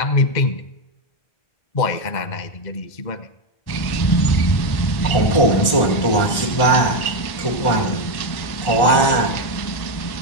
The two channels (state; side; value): late; right; 1.4 ms